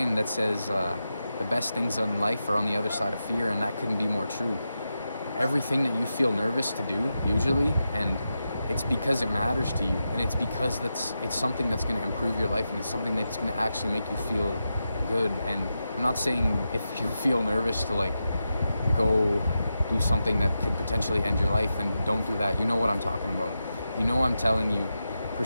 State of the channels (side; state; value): both; inverted; correlation -0.89